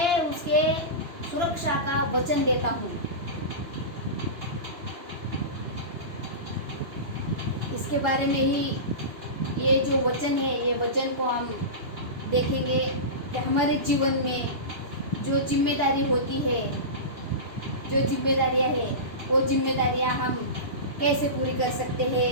उसके सुरक्षा का वचन देता हूँ। इसके बारे में ही ये जो वचन है, ये वचन को हम देखेंगे कि हमारे जीवन में जो जिम्मेदारी होती है, जो जिम्मेदारियां हैं, वो जिम्मेदारियां हम कैसे पूरी कर सकते हैं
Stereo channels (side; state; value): left; late; 2.9 ms